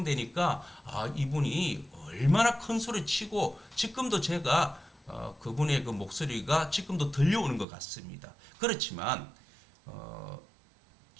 이분이 얼마나 큰 소리 치고 지금도 제가 그분의 그 목소리가 지금도 들려오는 것 같습니다. 그렇지만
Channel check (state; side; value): drops out; left; at 7.7 s